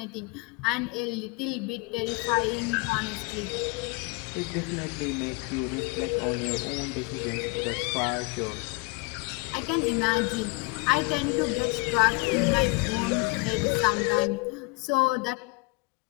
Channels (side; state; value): right; quieter; 27.8 dB